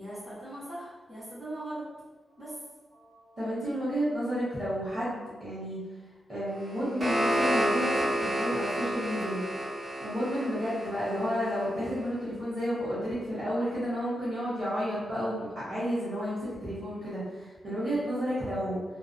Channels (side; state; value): both; normal; correlation 0.85